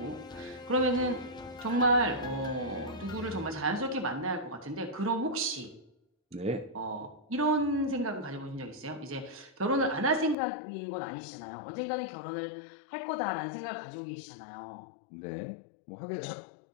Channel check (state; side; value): drops out; right; at 10.4 s